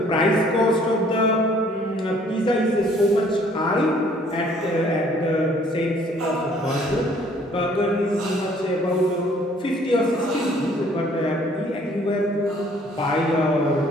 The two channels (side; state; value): both; normal; correlation 0.59